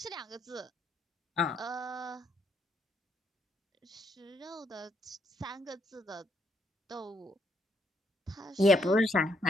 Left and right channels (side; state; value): both; normal; correlation 0.73